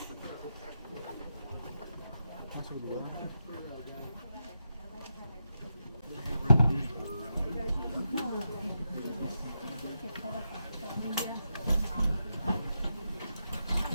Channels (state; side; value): inverted; both; correlation -0.85